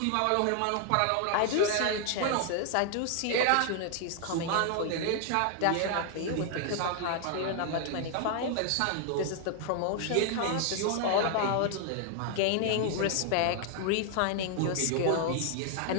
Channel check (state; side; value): different; both; correlation 0.00